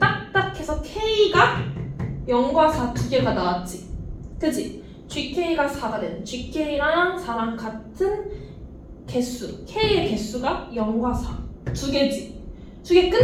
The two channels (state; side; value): identical; both; correlation 1.00